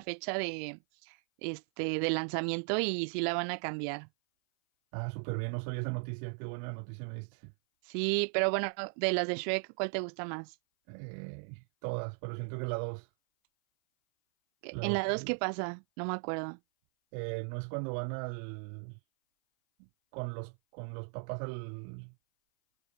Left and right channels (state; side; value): silent; left; 53 dB below the other